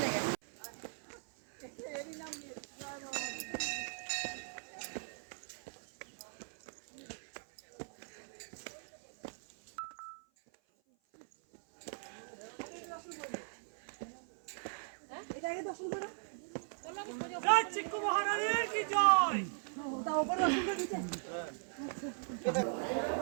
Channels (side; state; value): left; silent; 51 dB below the other